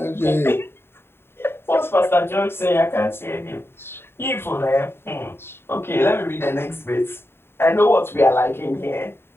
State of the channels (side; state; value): right; late; 0.11 ms